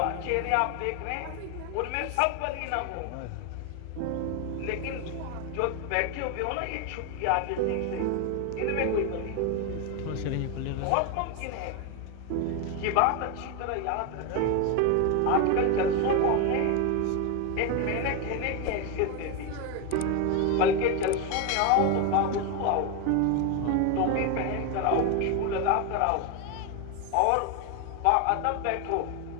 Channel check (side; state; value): both; different; correlation 0.02